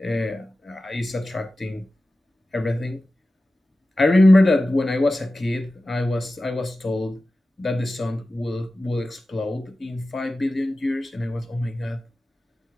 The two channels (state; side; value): normal; both; correlation 0.95